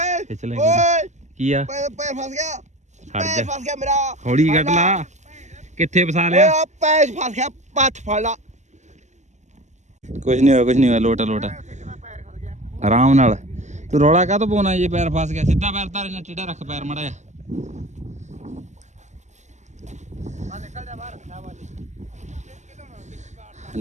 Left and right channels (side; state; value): left; late; 0.34 ms